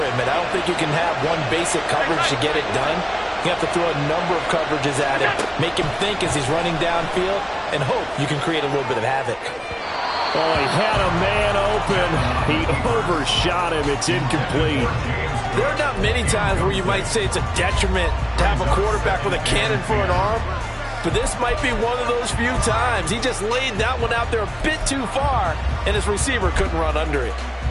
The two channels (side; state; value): both; identical; correlation 1.00